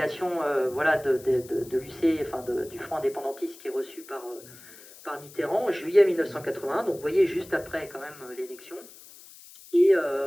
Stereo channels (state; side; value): noise; left; hiss, 20 dB below the sound